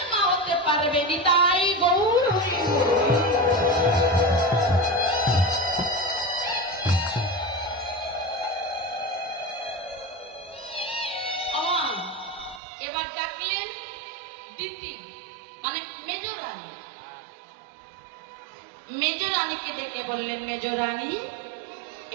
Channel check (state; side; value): drops out; left; at 12.6 s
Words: মা হতে পারবে। নিতাই গৌর হরি বল। এবার ডাকলেন দিতি মানে মেজ রানী। মেজ রানীকে ডেকে বললেন, মেজ রানী